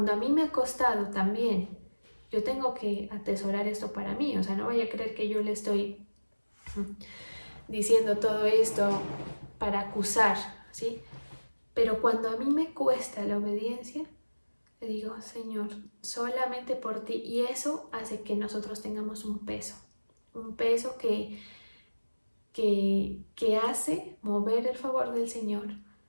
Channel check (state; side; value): inverted; both; correlation -1.00